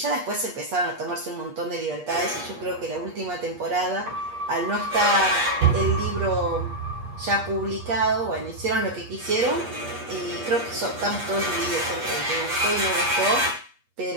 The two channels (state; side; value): late; left; 8.4 ms